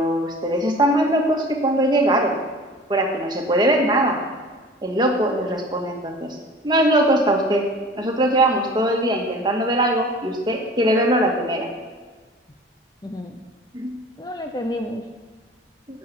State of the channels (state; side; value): normal; both; correlation 0.42